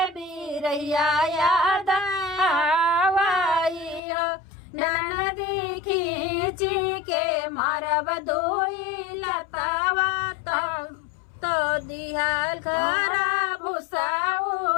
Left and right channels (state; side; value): drops out; right; at 4.0 s